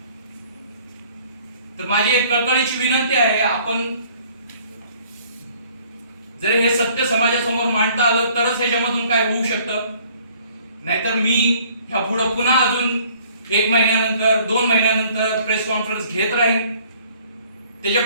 तर माझी एक कळकळीची विनंती आहे, आपण जर हे सत्य समाजासमोर मांडता आलं तरच ह्याच्यामधून काय होऊ शकतं. नाहीतर मी ह्या पुढे पुन्हा अजून 1 महिन्यानंतर 2 महिन्यानंतर प्रेस कॉन्फरन्स घेत राहीन. त्याच्या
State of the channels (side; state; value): both; inverted; correlation -0.57